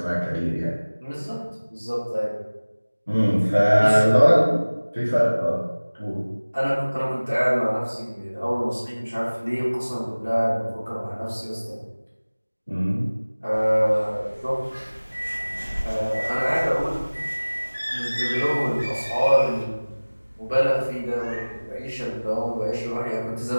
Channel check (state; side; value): inverted; both; correlation -1.00